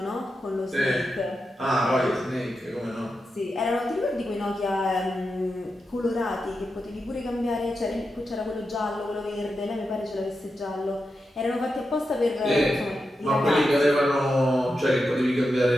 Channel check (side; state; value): both; normal; correlation 0.88